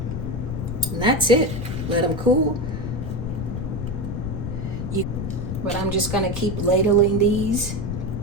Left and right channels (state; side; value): noise; left; rumble, 4 dB below the sound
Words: And that's it. Let them cool. But I'm just gonna keep ladling these